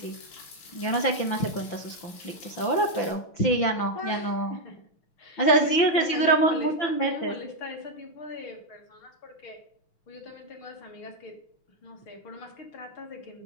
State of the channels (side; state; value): right; late; 5.9 ms